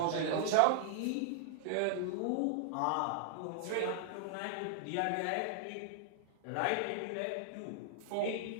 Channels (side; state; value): both; different; correlation 0.00